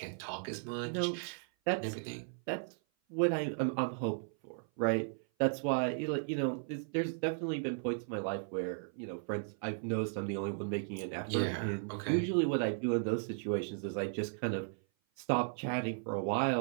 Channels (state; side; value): silent; left; 54 dB below the other